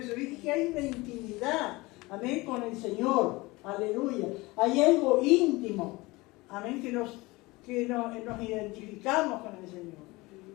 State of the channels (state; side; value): quieter; right; 22.2 dB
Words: ¿Viste que hay una intimidad, amén, con el Señor? Aleluya. Hay algo íntimo, amén, que nos identificamos con el Señor.